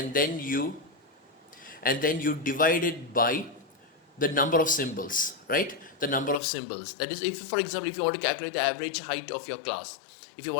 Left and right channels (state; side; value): drops out; right; at 6.4 s